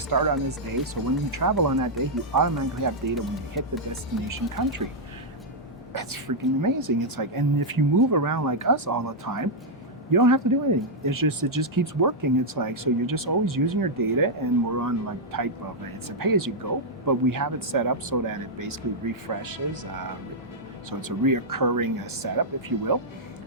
on this day. So when you travel on that day, you automatically have data when you hit the destination country. That's freaking amazing. It's like, and if you move around like us all the time, you don't have to do anything. It just keeps working. It's like, so you're just always using your data, and we're on like type of it's a pay-as-you-go, but we have it set up so that it basically refreshes. So it's a reoccurring setup, if you will.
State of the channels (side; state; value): both; normal; correlation -0.05